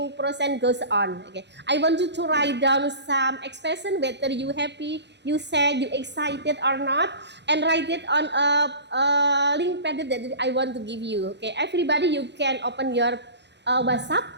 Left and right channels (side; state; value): left; late; 0.50 ms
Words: process goes on. Okay, I want you to write down some expression, whether you happy, you sad, you excited or not, and write it on a link pad that I want to give you. Okay, everybody, you can open your WhatsApp